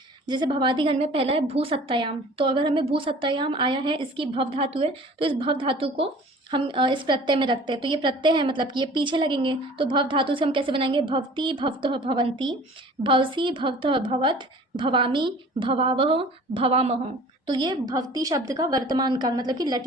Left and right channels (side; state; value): both; normal; correlation 0.46